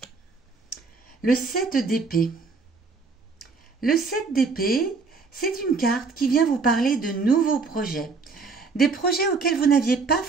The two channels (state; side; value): quieter; left; 4.4 dB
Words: Le 7 d'épée. Le 7 d'épée, c'est une carte qui vient vous parler de nouveaux projets. Des projets auxquels vous n'aviez pas